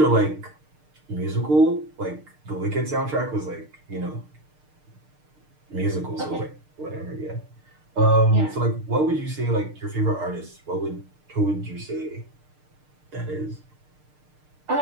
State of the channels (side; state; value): left; late; 6.6 ms